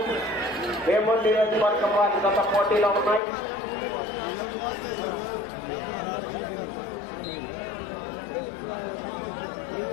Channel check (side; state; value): right; drops out; at 3.2 s